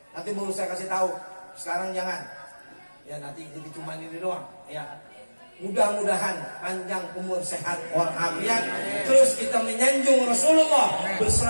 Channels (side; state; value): both; inverted; correlation -1.00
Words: Nanti baru saya kasih tahu. Sekarang jangan. Ya nanti jadi cuma ini doang ya. Mudah-mudahan panjang umur, sehat walafiat. Terus kita menyanjung Rasulullah,